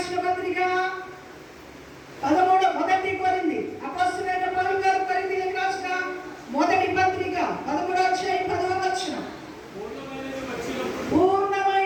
పత్రిక 13 మొదటి కొరింథీ అపొస్తలుడైన పౌలు గారు కొరింథీయులకు రాసిన మొదటి పత్రిక 13వ అధ్యాయం 10వ వచనం.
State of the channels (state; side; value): identical; both; correlation 1.00